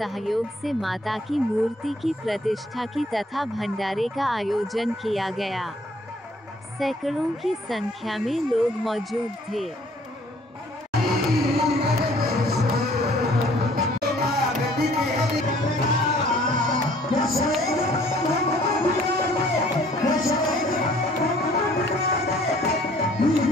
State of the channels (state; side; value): normal; both; correlation 0.58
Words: से माता की मूर्ति की प्रतिष्ठा की तथा भंडारे का आयोजन किया गया। सैकड़ों की संख्या में लोग मौजूद थे।